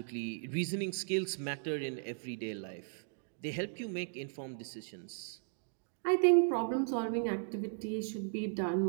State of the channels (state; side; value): silent; left; digital silence